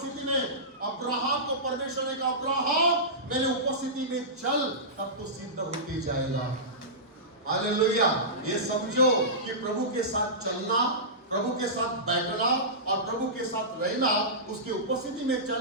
में। अब्राहम को परमेश्वर ने कहा अब्राहम मेरे उपस्थिति में चल, तब तो सिद्ध होते जाएगा। हालेलुया। ये समझो कि प्रभु के साथ चलना, प्रभु के साथ बैठना और प्रभु के साथ रहना, उसकी उपस्थिति में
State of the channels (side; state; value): both; normal; correlation -0.18